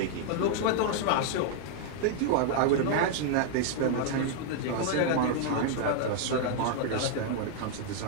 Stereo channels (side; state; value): both; different; correlation 0.00